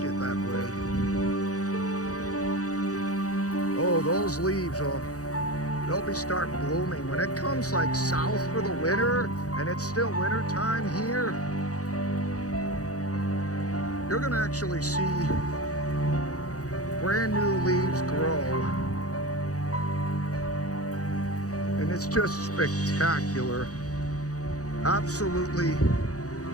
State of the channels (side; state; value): right; late; 0.66 ms